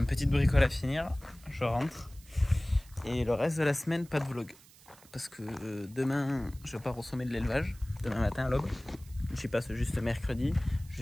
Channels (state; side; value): noise; right; hiss, 24 dB below the sound